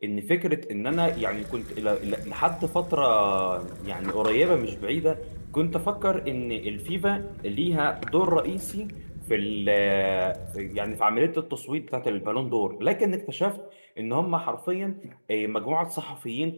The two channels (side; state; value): both; inverted; correlation -1.00